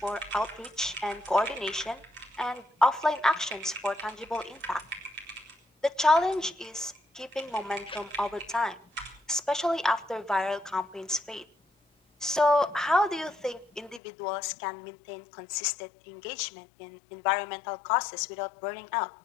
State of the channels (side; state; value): right; drops out; at 14.0 s